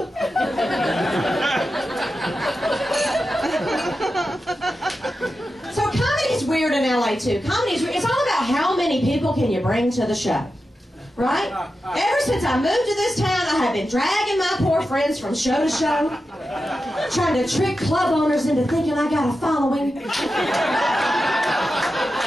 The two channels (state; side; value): normal; both; correlation 0.91